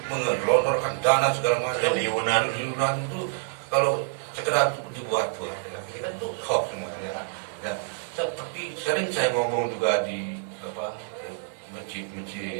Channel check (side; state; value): left; silent; digital silence